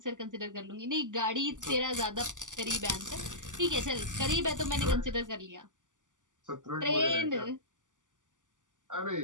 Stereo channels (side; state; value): left; late; 0.87 ms